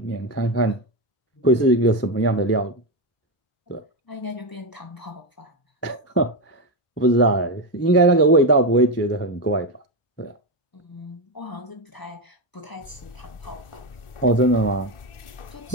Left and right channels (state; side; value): late; right; 1.4 ms